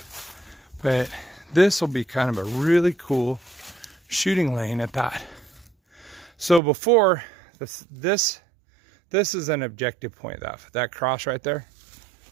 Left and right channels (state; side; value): drops out; left; at 6.6 s